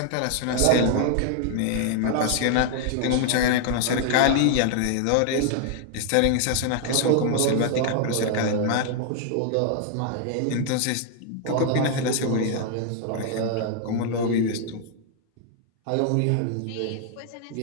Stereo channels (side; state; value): both; different; correlation 0.00